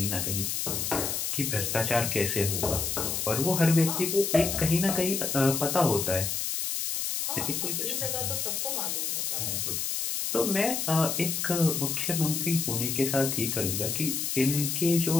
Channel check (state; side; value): noise; left; hiss, 1 dB below the sound